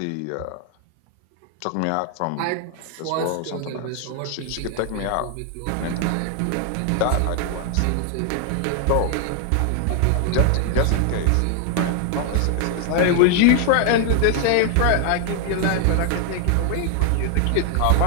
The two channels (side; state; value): both; different; correlation 0.00